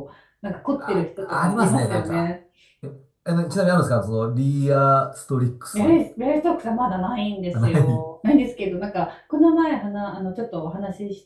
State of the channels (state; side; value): identical; both; correlation 1.00